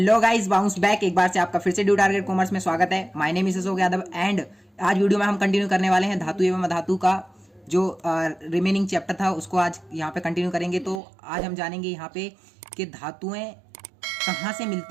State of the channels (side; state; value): left; drops out; at 11.0 s